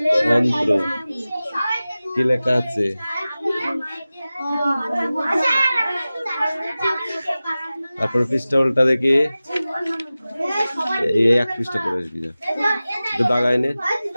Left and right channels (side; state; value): both; inverted; correlation -0.96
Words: অন্ত্র কি লেখা আছে? তারপর পৃষ্ঠা উল্টা দেখি, এই এক পৃষ্ঠা পড়ে আসবি না, একটু দাগাই নে।